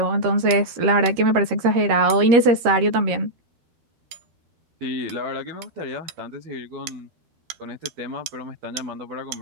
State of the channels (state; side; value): late; left; 13 ms